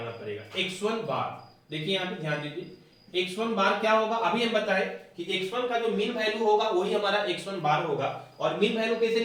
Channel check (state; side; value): identical; both; correlation 1.00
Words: पड़ेगा, x1 बार। देखिए यहाँ पे ध्यान दीजिए, x1 बार क्या होगा, अभी हम बताएं कि x1 का जो मीन वैल्यू होगा वही हमारा x1 बार होगा। और मीन वैल्यू कैसे